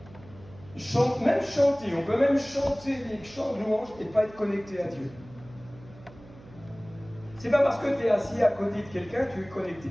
même chanter, on peut même chanter des chants de louange et pas être connecté à Dieu. C'est pas parce que tu es assis à côté de quelqu'un que tu es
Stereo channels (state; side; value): noise; right; hum, 21 dB below the sound